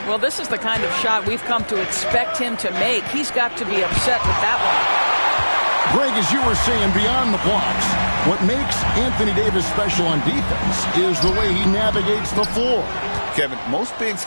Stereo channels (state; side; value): inverted; both; correlation -1.00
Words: Well, this is the kind of shot we've come to expect him to make. He's got to be upset with that one. Greg, as you were saying, beyond the blocks, what makes Anthony Davis special on defense is the way he navigates the floor. Kevin, most bigs